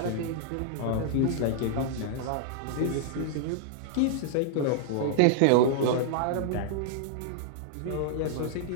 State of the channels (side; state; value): both; different; correlation -0.01